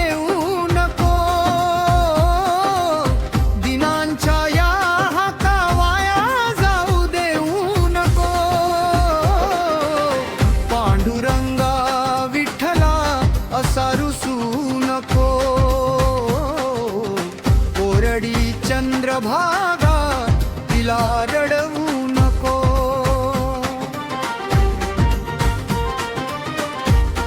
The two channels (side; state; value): both; identical; correlation 1.00